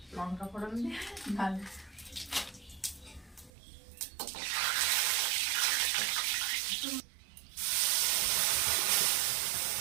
লঙ্কা ফোড়ন দিয়ে ডাল,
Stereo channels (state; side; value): drops out; left; at 3.5 s